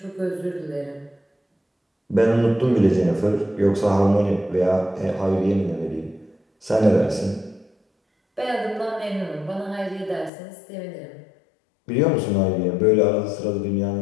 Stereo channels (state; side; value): drops out; right; at 10.3 s